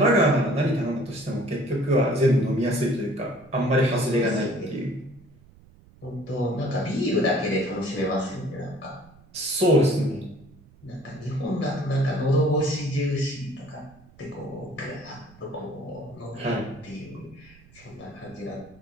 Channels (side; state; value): right; noise; rumble, 26 dB below the sound